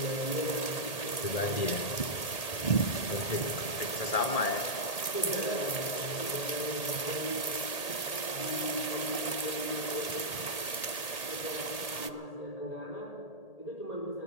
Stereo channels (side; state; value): right; late; 1.8 ms